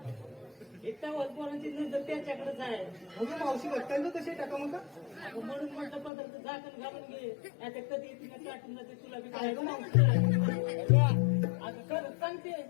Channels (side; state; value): right; drops out; at 6.1 s